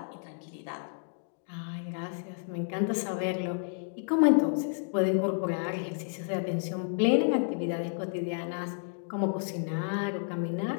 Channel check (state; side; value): silent; right; digital silence